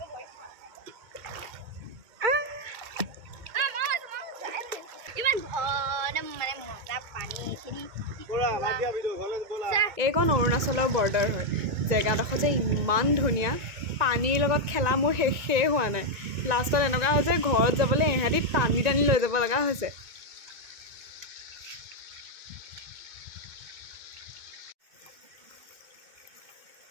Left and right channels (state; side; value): late; left; 2.2 ms